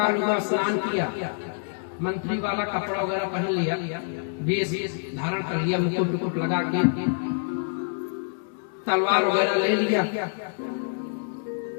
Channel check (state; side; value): silent; right; digital silence